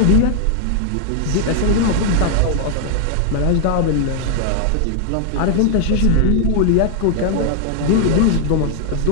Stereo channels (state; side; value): different; both; correlation 0.00